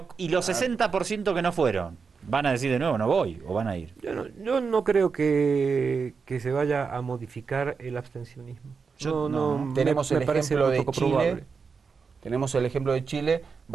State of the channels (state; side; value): quieter; left; 5.3 dB